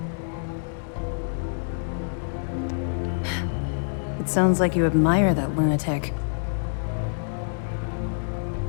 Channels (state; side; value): silent; right; digital silence